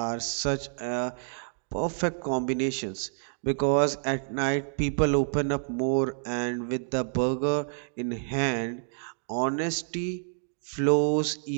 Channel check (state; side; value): silent; left; digital silence